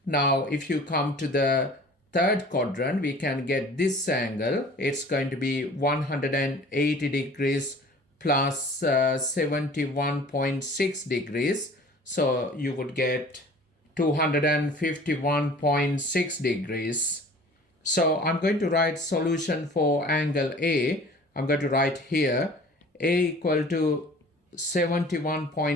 Now if you come to the third quadrant, we can get this angle. It's going to be 180 degrees plus 71.6 degrees. So you would get 251.6 degrees. So I'm going to write solution for angle A. I'm going to write here A equal to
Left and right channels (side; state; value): both; normal; correlation 0.46